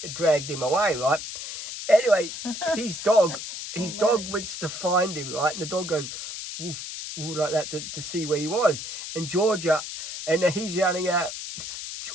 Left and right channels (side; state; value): left; noise; hiss, 8 dB below the sound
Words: dragged him away, right? Anyway, his dog That's went to find him, right? And the dog goes woof, woof, like that to see where he was. And Georgia, and he's yelling out,